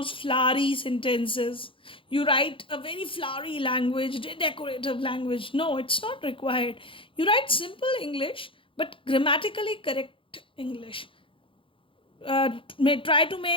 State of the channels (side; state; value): right; late; 0.25 ms